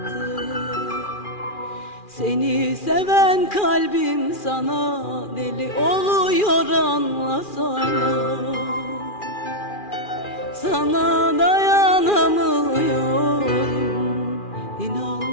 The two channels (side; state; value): right; late; 2.4 ms